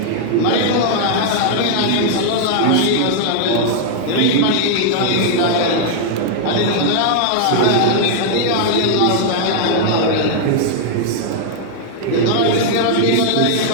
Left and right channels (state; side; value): different; both; correlation -0.01